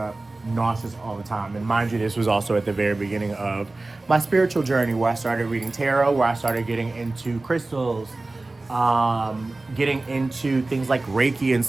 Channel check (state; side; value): quieter; left; 3.1 dB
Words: nauseous all the time. And mind you, this was also at the very beginning of my spiritual journey, where I started reading tarot, where I started getting into crystals, getting into things like Reiki and